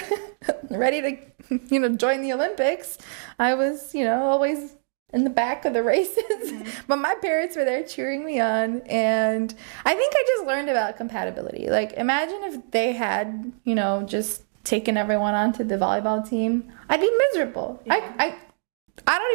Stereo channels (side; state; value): left; silent; digital silence